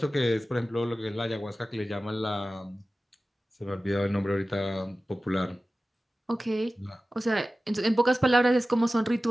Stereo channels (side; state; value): both; normal; correlation 0.95